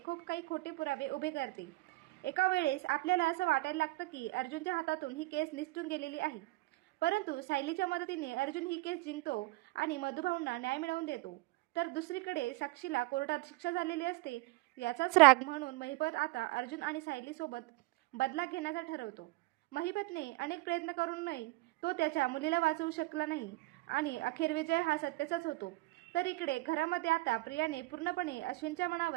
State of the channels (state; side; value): quieter; left; 21.5 dB